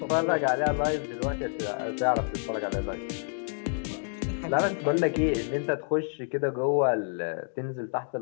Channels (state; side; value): silent; right; digital silence